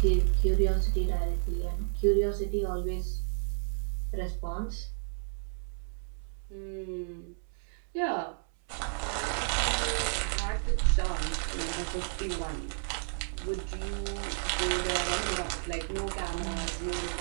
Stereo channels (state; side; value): silent; left; 57 dB below the other